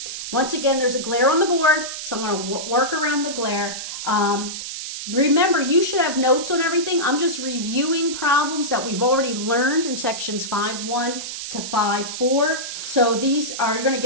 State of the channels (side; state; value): right; noise; hiss, 7 dB below the sound